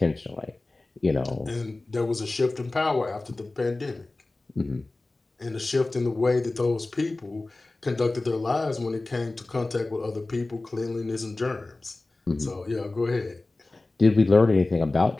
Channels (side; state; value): right; quieter; 3.1 dB